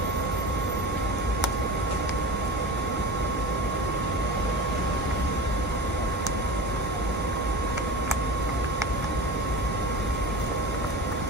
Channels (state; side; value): normal; both; correlation 0.31